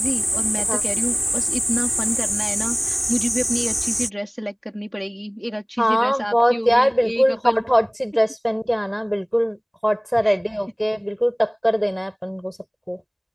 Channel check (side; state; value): both; identical; correlation 1.00